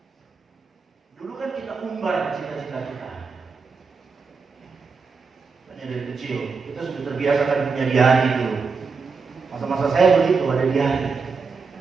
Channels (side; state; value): left; quieter; 4.9 dB